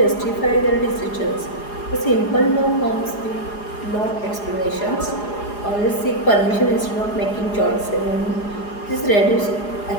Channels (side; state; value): right; late; 4.8 ms